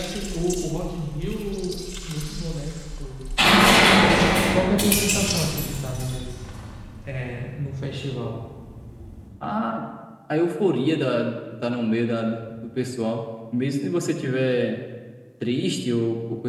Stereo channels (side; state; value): both; identical; correlation 1.00